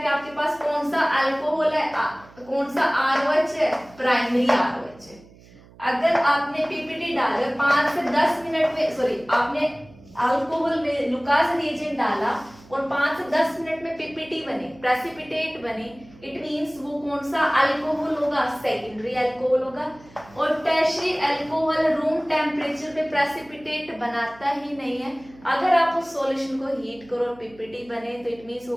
आपके पास कौन सा अल्कोहल है, कौन सा ROH है? प्राइमरी ROH है. अगर आपने PPT डाला 5 से 10 मिनट में, सॉरी आपने अल्कोहल में लुकास रिएजेंट डाला और 5 से 10 मिनट में PPT बने, प्रेसिपिटेट बने, इट मींस वो कौन सा अल्कोहल होगा? सेकेंडरी अल्कोहल होगा. और टर्शियरी अल्कोहल रूम टेम्परेचर पे प्रेसिपिटेट बनाता ही नहीं है. अगर आप उस सॉल्यूशन को हीट करो और PPT बने तो इट मींस वो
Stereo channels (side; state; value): right; noise; hum, 24 dB below the sound